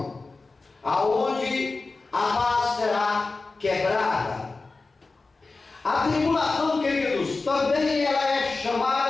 aonde a paz será quebrada. A tribulação, queridos, também ela é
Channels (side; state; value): right; quieter; 3.7 dB